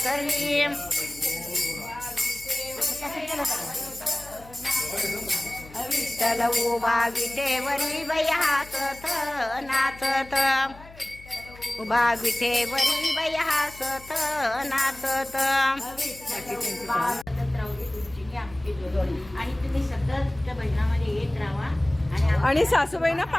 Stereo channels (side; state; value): left; noise; hum, 20 dB below the sound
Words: विठ्ठल उभा विटेवरी बाई हसत नाचत, उभा विटेवरी बाई हसत नाचत. आणि तुम्ही सतत त्या भजनामध्ये येत राहा आणि सासूबाईंना